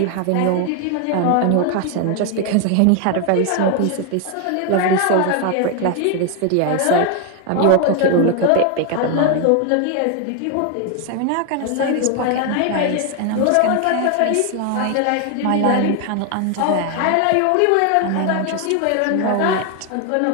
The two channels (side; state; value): both; different; correlation 0.01